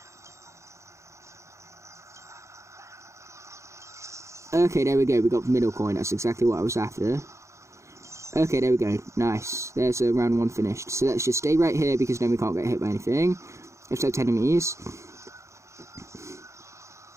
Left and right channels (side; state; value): left; late; 0.14 ms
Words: Okay, there we go. We got the middle coin. That's exactly what I was after. Okay, there we go. Nice. There's round 1 finished. So let's just stay right here, because then we can't get hit by anything. Except enemies.